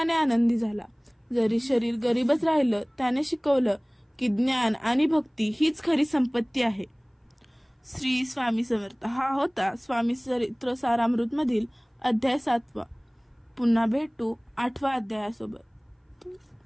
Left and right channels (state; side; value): identical; both; correlation 1.00